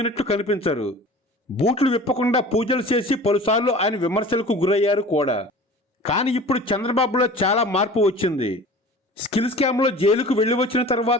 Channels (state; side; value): normal; both; correlation 0.41